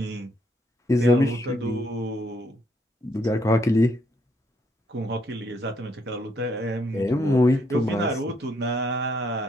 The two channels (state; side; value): normal; both; correlation 0.72